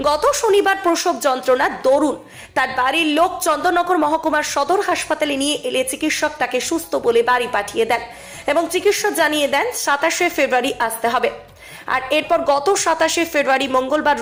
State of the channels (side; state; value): both; identical; correlation 1.00